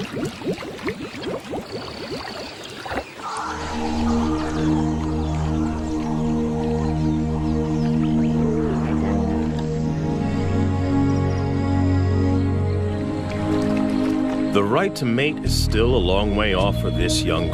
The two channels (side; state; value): both; identical; correlation 1.00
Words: The right to mate is still a long way off for this young